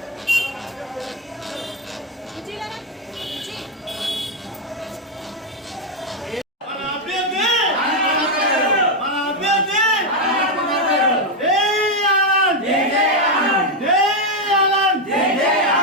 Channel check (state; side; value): normal; both; correlation 0.04